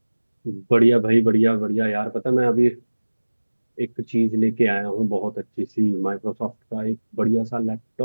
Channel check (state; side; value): inverted; both; correlation -1.00